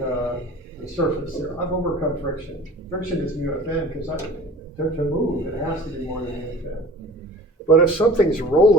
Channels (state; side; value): normal; both; correlation 0.43